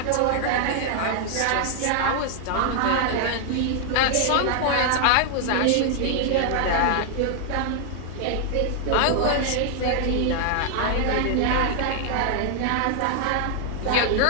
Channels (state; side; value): different; both; correlation 0.00